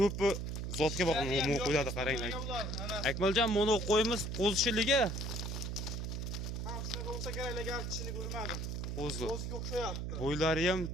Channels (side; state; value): right; noise; hum, 3 dB below the sound